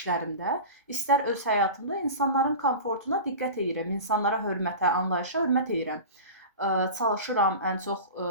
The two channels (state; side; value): inverted; both; correlation -0.31